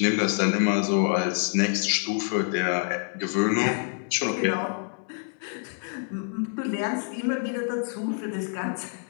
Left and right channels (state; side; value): silent; right; 55 dB below the other